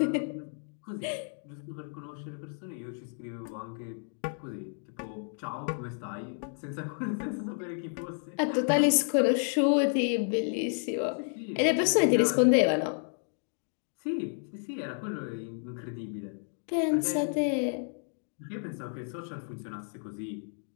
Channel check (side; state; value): right; silent; 57 dB below the other